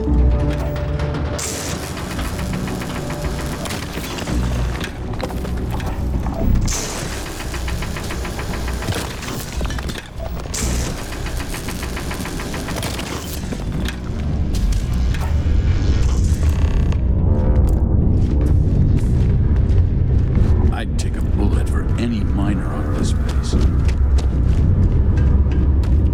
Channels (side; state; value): both; identical; correlation 1.00